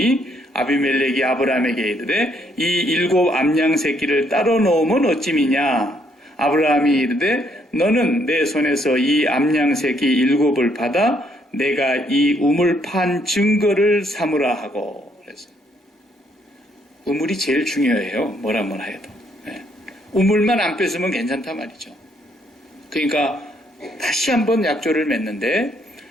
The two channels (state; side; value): normal; both; correlation 0.70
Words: 아비멜렉이 아브라함에게 이르되 이 7 암양 새끼를 따로 넣으면 어찌미냐. 아브라함이 이르되 너는 내 손에서 이 암양 새끼 7을 받아 내가 이 우물 판 증거를 삼으라 하고. 우물이 제일 중요해요. 뭐라 해도. 우물만 안 뺐으면 괜찮단 말이죠. 그러니까 다시 한번 약조를 맺는데